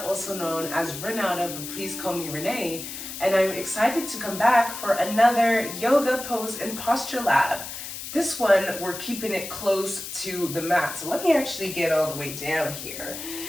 also known as Renata, but please call me Renee, and I'm excited to come back for another yoga pose and posture lab. This one, we're keeping it close to the mat, so let me actually get all the way down here.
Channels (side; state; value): left; noise; hiss, 9 dB below the sound